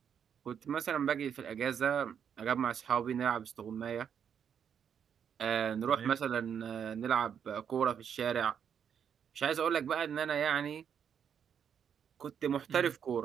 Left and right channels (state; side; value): quieter; left; 8.0 dB